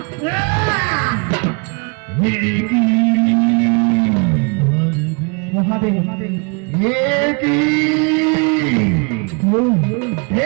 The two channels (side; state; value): left; quieter; 33.7 dB